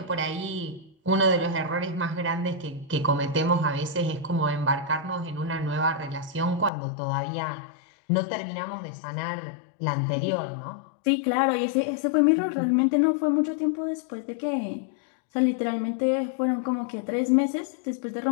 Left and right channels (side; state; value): right; drops out; at 6.7 s